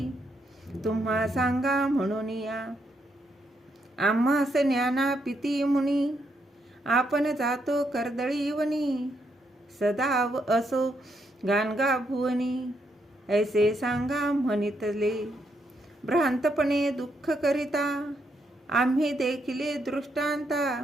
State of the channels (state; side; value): normal; both; correlation 0.77